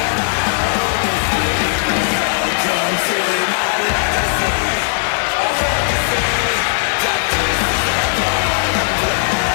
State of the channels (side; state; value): right; silent; digital silence